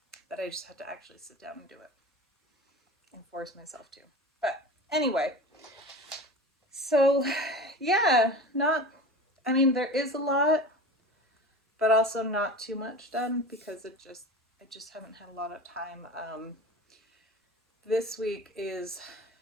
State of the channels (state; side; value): normal; both; correlation 0.33